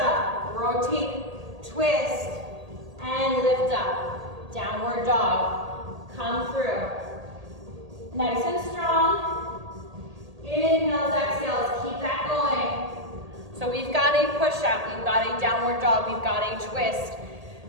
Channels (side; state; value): left; late; 1.8 ms